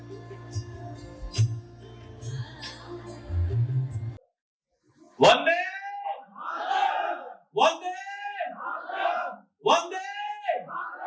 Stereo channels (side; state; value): both; identical; correlation 1.00